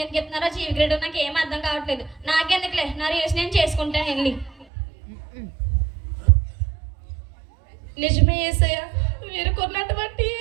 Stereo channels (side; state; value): left; drops out; at 4.7 s